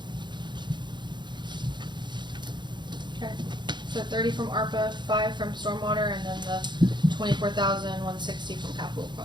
Okay. So 30 from ARPA, 5 from stormwater, and then the 24,160 from capital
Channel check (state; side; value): late; left; 0.22 ms